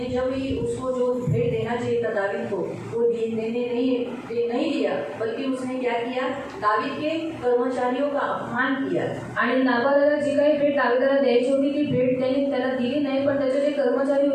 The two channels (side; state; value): both; identical; correlation 1.00